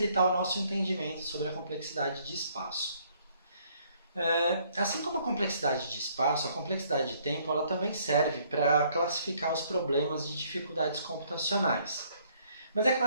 o nosso entendimento sobre a complexidade de espaço. Assim como a complexidade de espaço, a complexidade de tempo ela também serve para classificar os problemas de dificuldades computacionais. Mas é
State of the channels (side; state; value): both; inverted; correlation -0.65